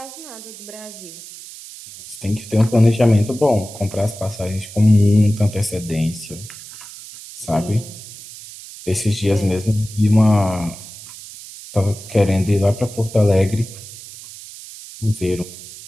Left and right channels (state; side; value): noise; right; hiss, 15 dB below the sound